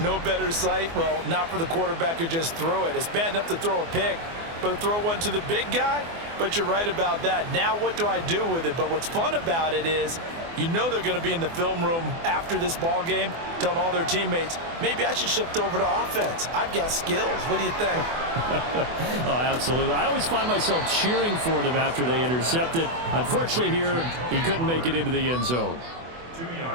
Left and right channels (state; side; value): late; left; 24 ms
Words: no better sight? Well, not for the quarterback who just threw it. It's bad enough to throw a pick, but to throw one to the big guy? But you're right about that. Now what do I do with it? But what's fun about it is, you know they're going to be in the film room after this ball game telling all their teammates, maybe I should shift over to offense. I've got skills. What do you think? Oh, absolutely. I always find myself cheering for them after they intercept it. Unfortunately here, he couldn't make it into the end zone. 2